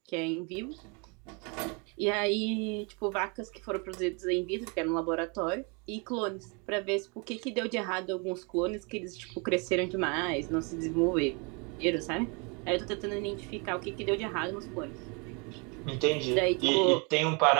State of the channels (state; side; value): quieter; left; 32.5 dB